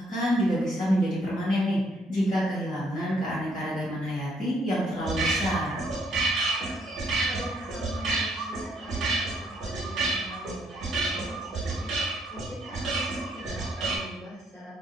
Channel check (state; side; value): normal; both; correlation 0.70